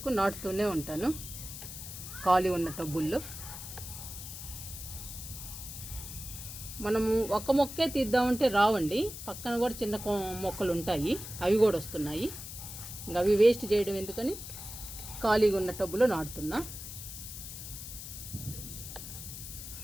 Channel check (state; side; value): noise; left; hiss, 10 dB below the sound